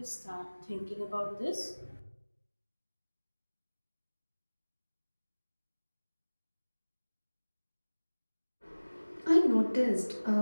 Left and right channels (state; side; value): inverted; both; correlation -1.00